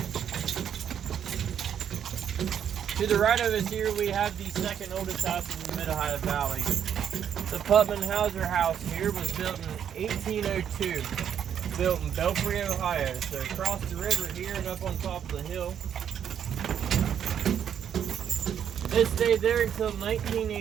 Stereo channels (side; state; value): left; quieter; 8.9 dB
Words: To the right of us here we have the second oldest house in the Mid-Ohio Valley. The Putman Hauser house here was built in 1802. Built in Belfry, Ohio. So across the river here and up on top of the hill. It stayed there until